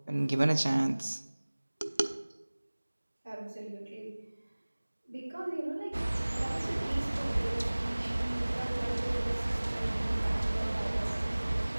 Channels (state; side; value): inverted; both; correlation -1.00